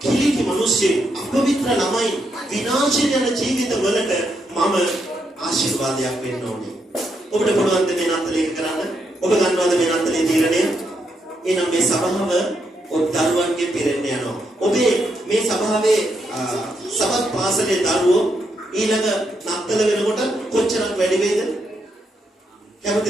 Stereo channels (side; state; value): both; normal; correlation 0.80